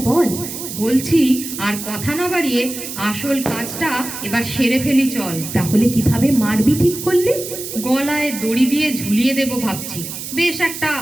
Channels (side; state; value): right; noise; hiss, 8 dB below the sound